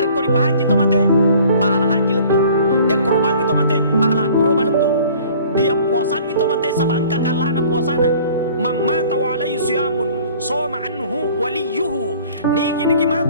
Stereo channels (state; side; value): inverted; both; correlation -0.51